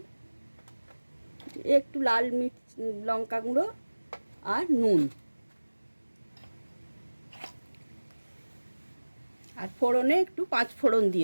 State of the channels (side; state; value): both; inverted; correlation -1.00